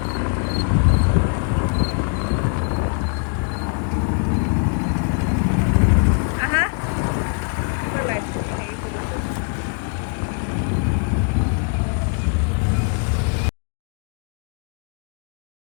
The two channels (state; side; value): quieter; right; 39.4 dB